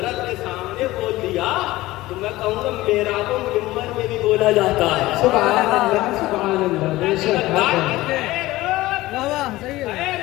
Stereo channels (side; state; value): right; quieter; 17.9 dB